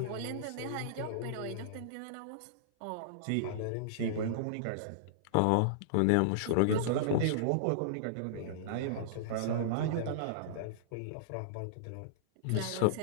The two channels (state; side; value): different; both; correlation -0.02